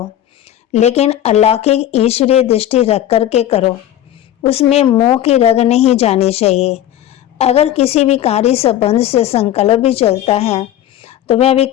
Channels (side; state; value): right; quieter; 12.1 dB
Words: लेकिन अलौकिक ईश्वरीय दृष्टि रख कर के करो। उसमें मोह की रग नहीं जानी चाहिए। अगर किसी विकारी संबंध से संकल्प भी चलता है तो वह भी